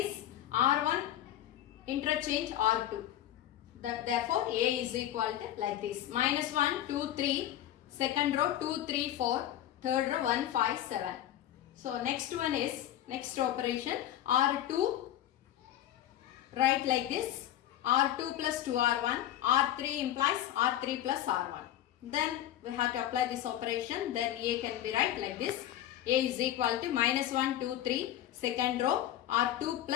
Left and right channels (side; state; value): right; quieter; 12.4 dB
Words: R1 interchange R2. Therefore A is equal to like this, minus 1, 2, 3, second row 2, 3, 4, third row 1, 5, 7. So next one is, next operation R2, write like this, R2 plus 2R1, R3 implies R3 plus R1. Then we have to apply this operation, then A can be right like this, A is equal to minus 1, 2, 3, second row R2